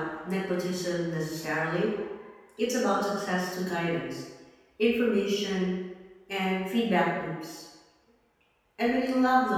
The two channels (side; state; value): both; identical; correlation 1.00